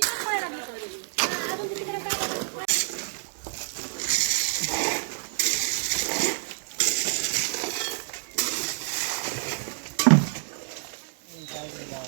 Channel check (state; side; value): silent; left; digital silence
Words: पाहायला लागली अजून तिकडे काय